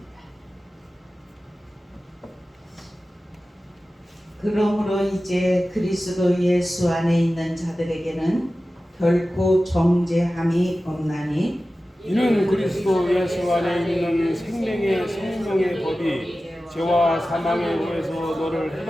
그러므로 이제 그리스도 예수 안에 있는 자들에게는 결코 정죄함이 없나니 이는 그리스도 예수 안에 있는 생명의 성령의 법이 죄와 사망의 후에서 너를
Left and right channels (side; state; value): both; normal; correlation 0.95